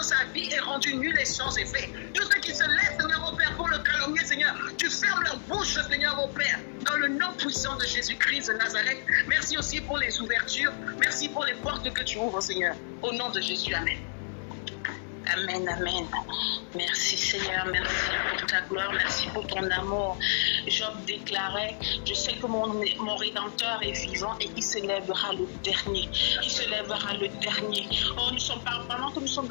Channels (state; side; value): silent; right; digital silence